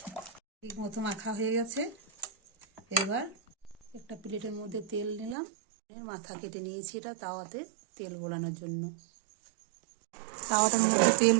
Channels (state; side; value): drops out; left; at 5.4 s